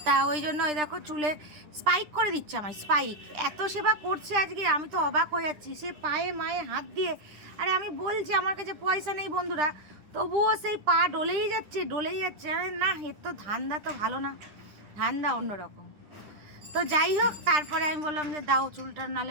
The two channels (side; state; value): left; late; 10 ms